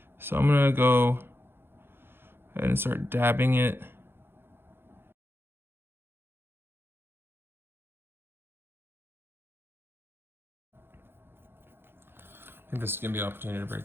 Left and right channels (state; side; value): late; left; 0.11 ms